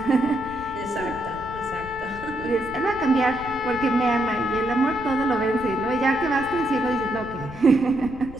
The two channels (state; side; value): noise; left; rumble, 15 dB below the sound